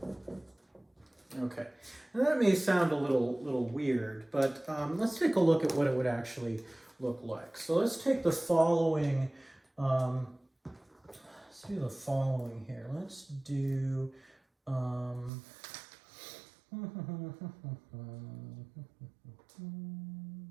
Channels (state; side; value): drops out; left; at 15.3 s